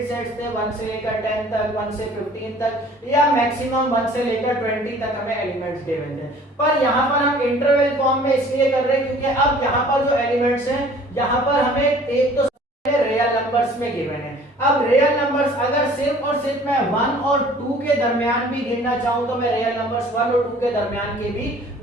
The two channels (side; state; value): both; normal; correlation 0.51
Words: सेट्स थे, 1 से लेकर 10 तक, 1 से 15 तक या मैक्सिमम 1 से लेकर 20 तक हमें एलिमेंट्स गिवन थे। पर यहाँ पर हम इंटरवल फॉर्म में इसलिए कर रहे हैं क्योंकि अब यहाँ पर जो एलिमेंट्स हैं यहाँ पर हमें एक तो रियल नंबर्स में गिवन है। अब रियल नंबर्स अगर सिर्फ और सिर्फ मैं 1 और 2 के दरमियान भी गिनना चाहूं तो मैं रियल नंबर्स 1 और 2 के दरमियान के भी